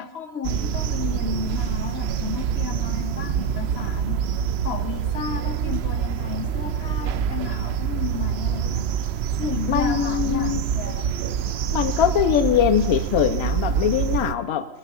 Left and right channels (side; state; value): left; late; 3.0 ms